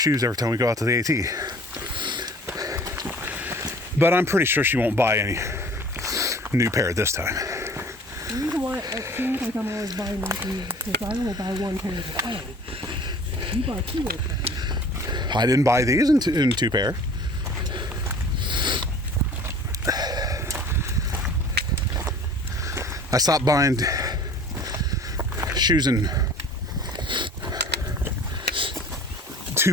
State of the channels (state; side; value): normal; both; correlation 0.47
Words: every time we go out to the AT. But I'm pretty sure she won't buy any new pair this time. The reason why it seems like I'm always buying new shoes is because I only buy one pair at a time. You buy 2 at a time. I didn't buy these in two pair. I stopped buying shoes in